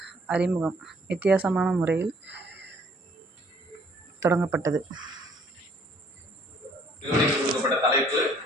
அறிமுகம் வித்தியாசமான முறையில் தொடங்கப்பட்டது. தலைப்பு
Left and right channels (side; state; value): both; normal; correlation 0.61